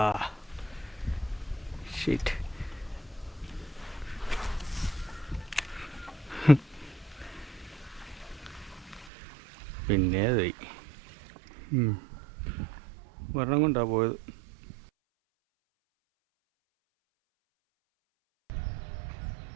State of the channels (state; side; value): drops out; left; at 9.1 s